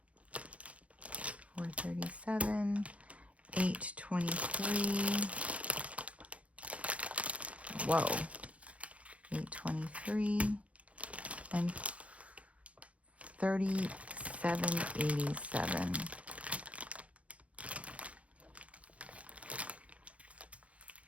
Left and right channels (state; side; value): late; left; 0.064 ms